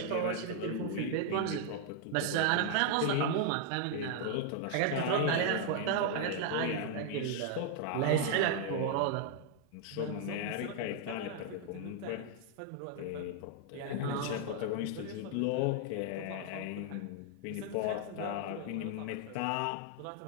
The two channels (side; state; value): both; different; correlation 0.00